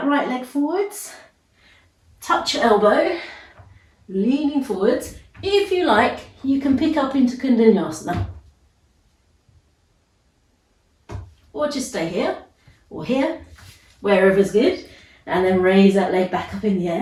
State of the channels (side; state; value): both; identical; correlation 1.00